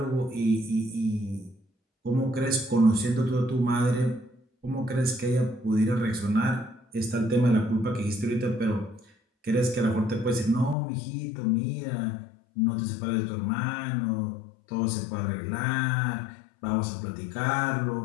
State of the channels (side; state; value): right; drops out; at 10.8 s